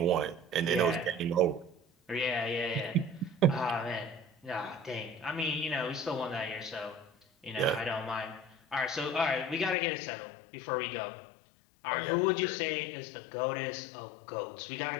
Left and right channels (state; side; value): drops out; right; at 9.8 s